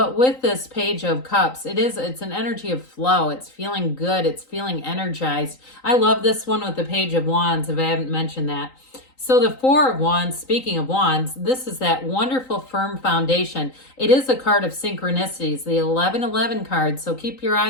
with this Page of Cups, it's an energy of flow. It's feeling good. It's feeling energized. I love this one with the Page of Wands, if I haven't mentioned that. So the 4 of Wands, speaking of Wands, this is that wonderful firm foundation. It is a card of synchronicities, the 1111 card. So keep your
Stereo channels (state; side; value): late; right; 3.9 ms